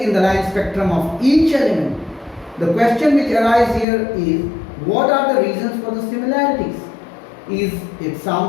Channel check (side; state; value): right; drops out; at 3.9 s